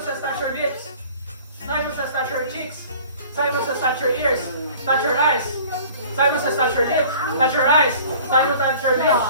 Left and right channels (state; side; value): inverted; both; correlation -0.47